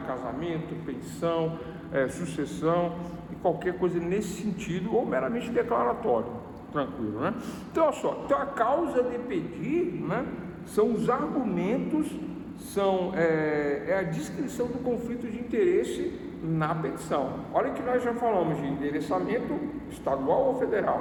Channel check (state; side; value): identical; both; correlation 1.00